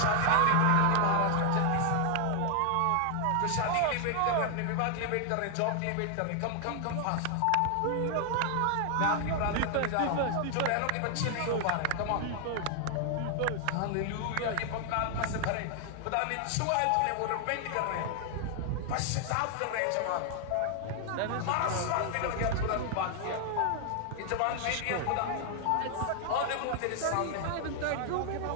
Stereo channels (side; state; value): both; different; correlation 0.00